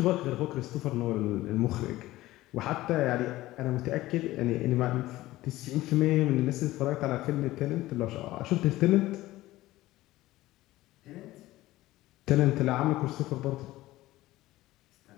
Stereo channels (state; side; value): quieter; right; 17.0 dB